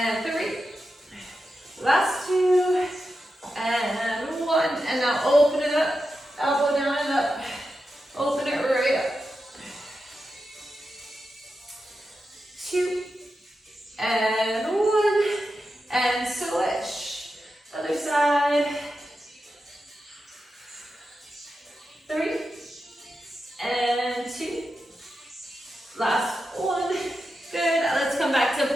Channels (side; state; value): both; normal; correlation 0.90